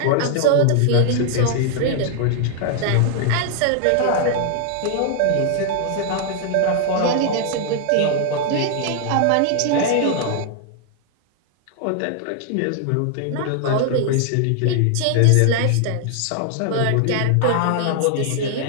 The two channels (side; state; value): both; different; correlation 0.00